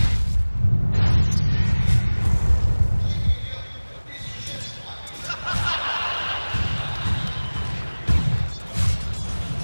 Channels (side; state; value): both; inverted; correlation -1.00